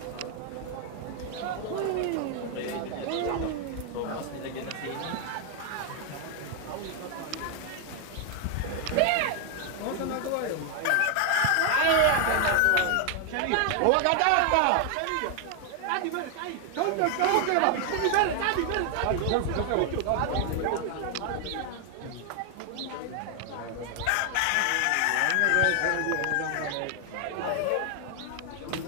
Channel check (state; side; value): different; both; correlation 0.00